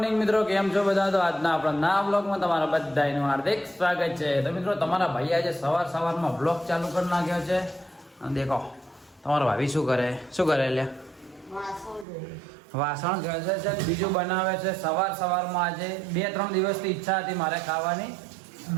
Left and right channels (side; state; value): left; drops out; at 12.1 s